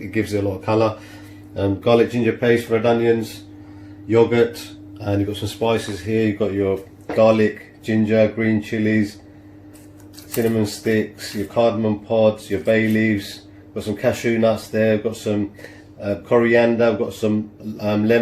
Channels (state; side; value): identical; both; correlation 1.00